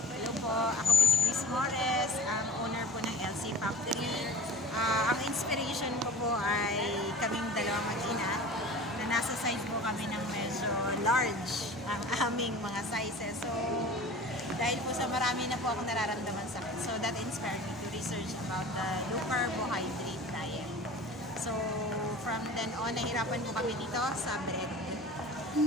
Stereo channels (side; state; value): right; noise; hum, 27 dB below the sound